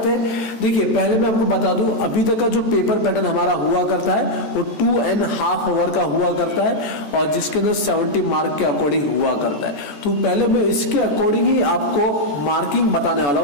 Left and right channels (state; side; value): late; right; 14 ms